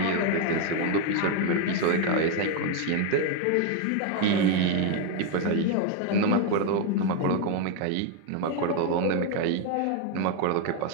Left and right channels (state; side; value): different; both; correlation 0.01